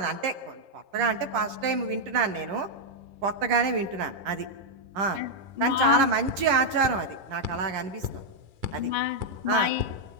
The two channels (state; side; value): late; left; 10 ms